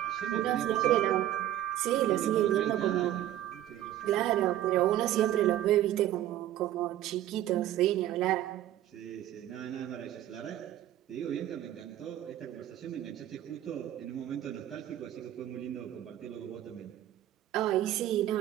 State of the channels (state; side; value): quieter; left; 12.9 dB